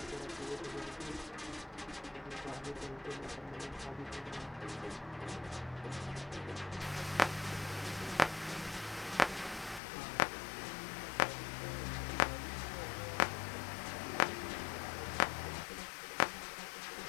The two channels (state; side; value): drops out; right; at 9.8 s